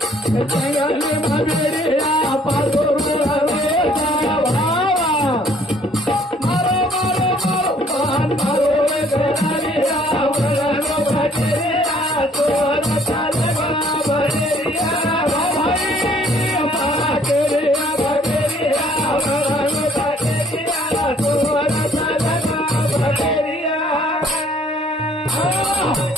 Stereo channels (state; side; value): normal; both; correlation 0.60